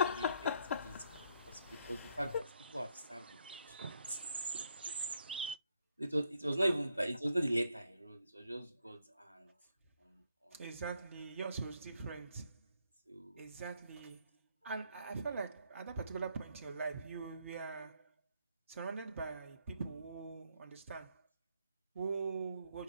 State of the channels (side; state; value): both; inverted; correlation -0.73